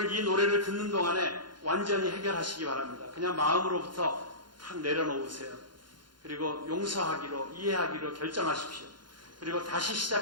이 노래를 듣는 동안에 완전히 해결하시기 바랍니다. 그냥 마음으로부터 탁 내려놓으세요. 그리고 용서하기로, 이해하기로 결정하십시오. 그리고 다시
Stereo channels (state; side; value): late; left; 0.71 ms